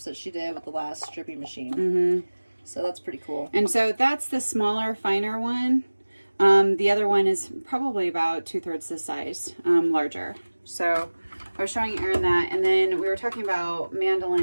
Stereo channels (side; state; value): both; inverted; correlation -1.00